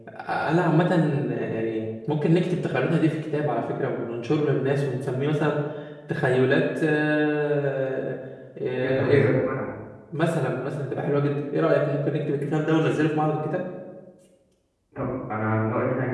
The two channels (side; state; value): both; identical; correlation 1.00